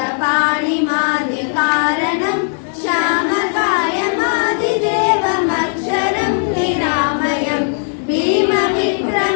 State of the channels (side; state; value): right; silent; 66 dB below the other